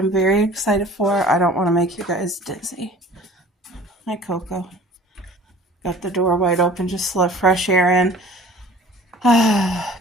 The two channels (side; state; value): both; normal; correlation 0.46